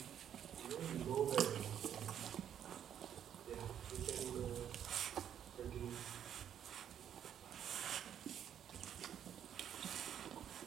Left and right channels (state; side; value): quieter; left; 9.5 dB